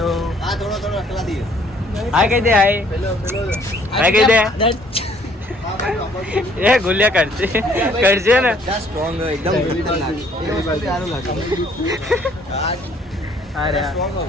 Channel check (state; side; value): normal; both; correlation 0.61